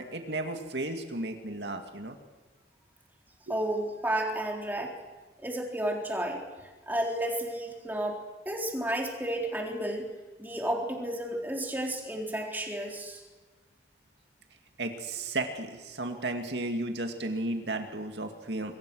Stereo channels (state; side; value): normal; both; correlation 0.53